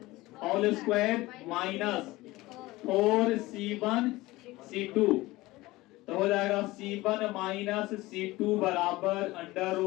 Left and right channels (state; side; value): quieter; right; 19.4 dB